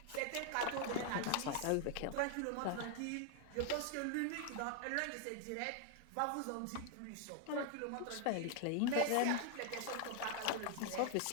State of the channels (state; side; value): different; both; correlation 0.00